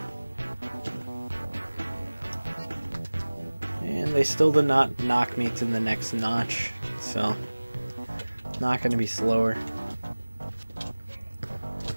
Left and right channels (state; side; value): inverted; both; correlation -1.00